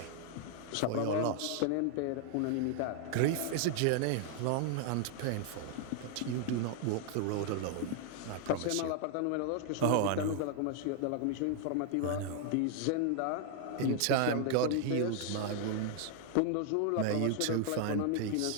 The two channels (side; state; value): both; different; correlation 0.00